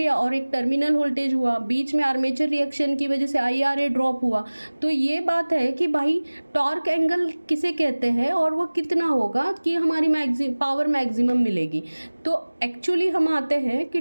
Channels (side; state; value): both; inverted; correlation -1.00